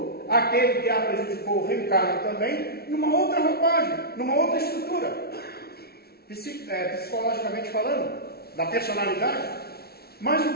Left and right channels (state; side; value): late; right; 0.45 ms